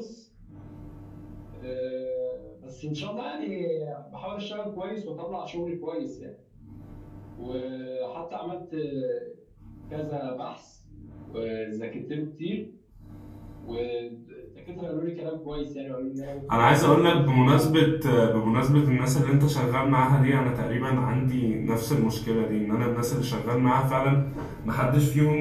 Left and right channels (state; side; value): identical; both; correlation 1.00